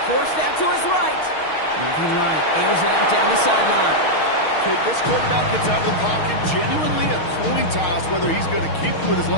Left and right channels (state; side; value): late; right; 6.4 ms